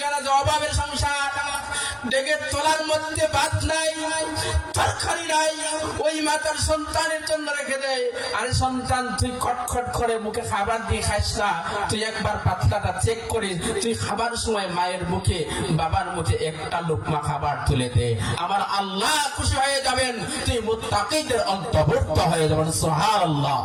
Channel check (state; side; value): identical; both; correlation 1.00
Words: আছে, অভাবের সংসার, ডেকে তোলার মধ্যে ভাত নাই, তরকারি নাই, ওই মা তার সন্তানের জন্য রেখে দেয়। আরে সন্তান তুই খটখট করে মুখে খাবার দিয়ে খাইস না, তুই একবার পাতলাটা চেক করে তুই খাবার সময় মায়ের মুখে বাবার মুখে একটা লোকমা খাবার তুলে দে, আমার আল্লাহ খুশি হয়ে যাবেন, তুই মুত্তাকিদের অন্তর্ভুক্ত হয়ে যাবেন। সুবহানাল্লাহ।